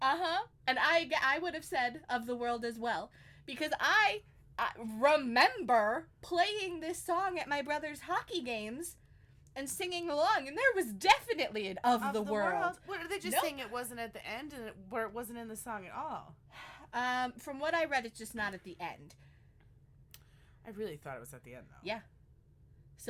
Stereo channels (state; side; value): identical; both; correlation 1.00